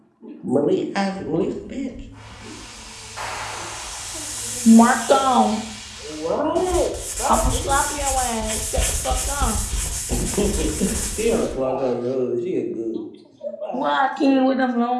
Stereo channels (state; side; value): identical; both; correlation 1.00